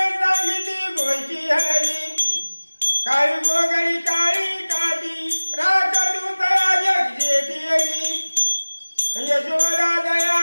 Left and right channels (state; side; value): inverted; both; correlation -1.00